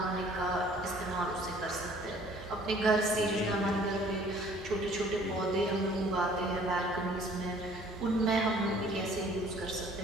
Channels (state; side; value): normal; both; correlation 0.55